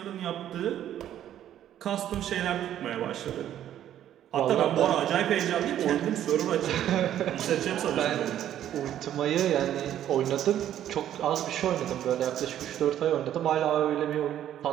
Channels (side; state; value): left; quieter; 11.3 dB